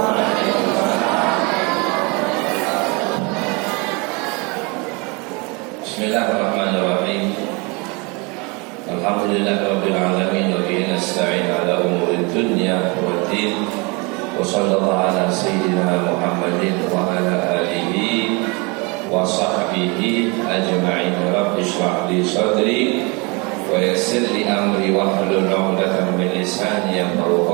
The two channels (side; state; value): left; quieter; 28.9 dB